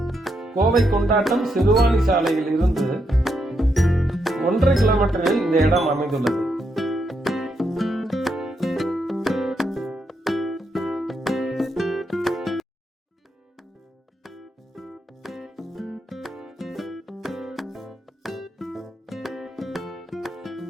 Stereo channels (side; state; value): both; normal; correlation 0.80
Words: கோவை கொண்டாட்டம் சிறுவாணி சாலையில் இருந்து 1.5 கிலோமீட்டரில் இந்த இடம் அமைந்துள்ளது.